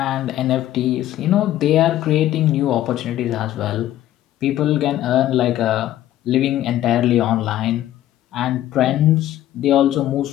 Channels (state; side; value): quieter; right; 13.3 dB